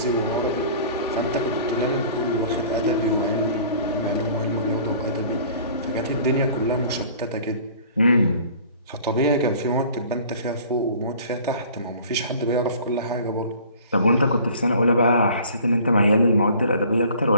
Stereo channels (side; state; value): both; inverted; correlation -0.49